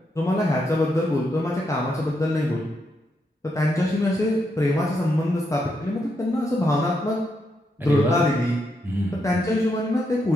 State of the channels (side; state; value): both; normal; correlation 0.80